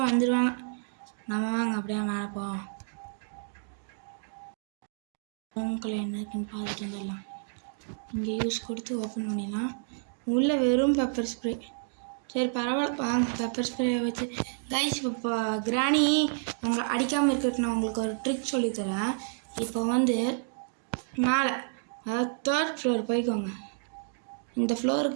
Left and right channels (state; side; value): silent; left; 58 dB below the other